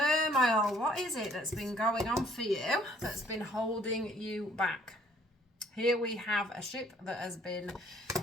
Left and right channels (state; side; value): normal; both; correlation 0.61